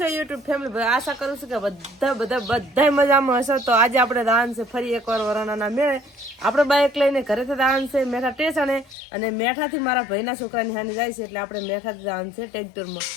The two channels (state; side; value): drops out; right; at 9.0 s